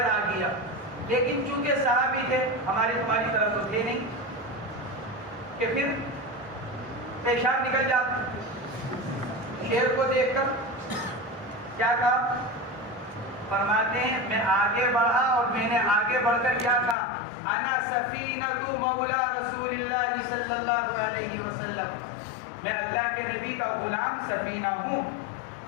آ گیا, لیکن چونکہ صحابی تھے ہماری تمہاری طرف تو تھے نہیں کہ پھر پیشاب نکل جاتا. شیر کو دیکھ کر کیا کہا؟ فرماتے ہیں میں آگے بڑھا اور میں نے آگے بڑھ کر کیا کہا؟ انا سفینہ مولا رسول اللہ صلی اللہ علیہ وسلم, میں اللہ کے نبی کا غلام سفینہ ہوں.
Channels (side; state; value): right; drops out; at 16.9 s